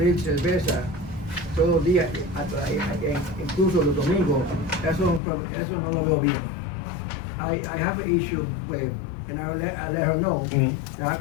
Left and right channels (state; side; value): drops out; right; at 5.2 s